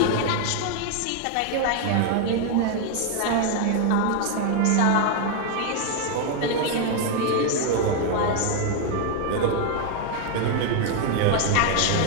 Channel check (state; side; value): different; both; correlation 0.00